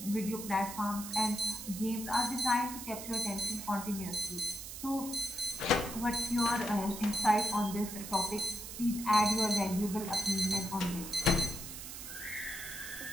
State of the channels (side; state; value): right; noise; hiss, 9 dB below the sound